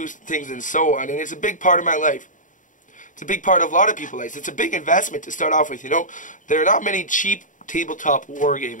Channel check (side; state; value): right; late; 0.37 ms